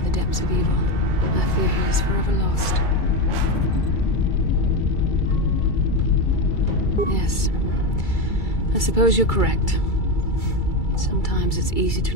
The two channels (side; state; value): right; late; 2.3 ms